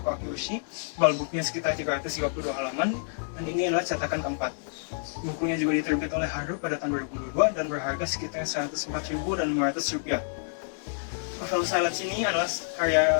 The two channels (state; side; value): silent; right; digital silence